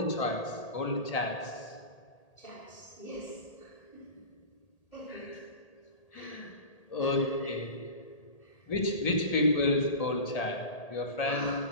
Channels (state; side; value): late; right; 1.8 ms